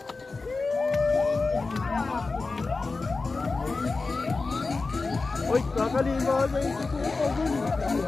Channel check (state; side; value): quieter; right; 3.9 dB